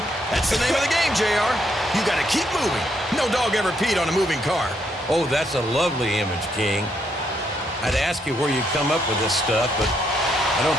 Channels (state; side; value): normal; both; correlation 0.75